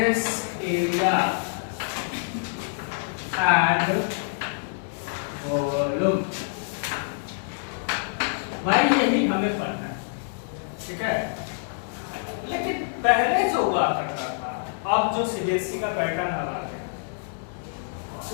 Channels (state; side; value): silent; right; digital silence